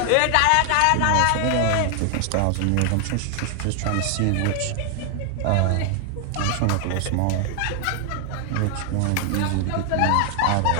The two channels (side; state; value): both; different; correlation 0.00